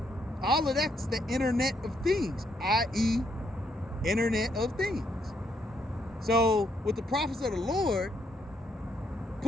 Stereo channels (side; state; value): both; normal; correlation 0.74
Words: All of that's the Internet of Things, i.e. Internet of Things. So with the prophets of the Lord